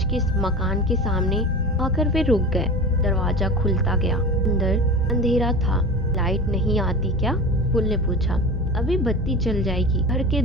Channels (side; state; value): both; normal; correlation 0.32